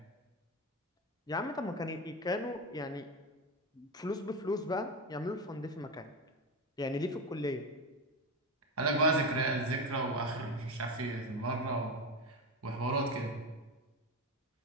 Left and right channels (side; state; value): both; normal; correlation 0.18